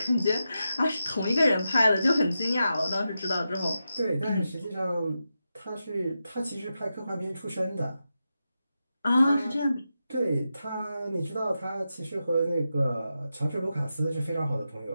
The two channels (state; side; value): inverted; both; correlation -0.89